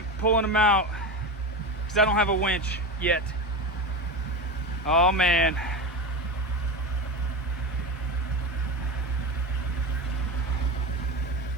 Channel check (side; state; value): both; normal; correlation 0.21